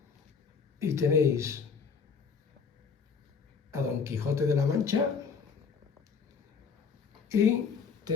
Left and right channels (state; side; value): quieter; right; 5.8 dB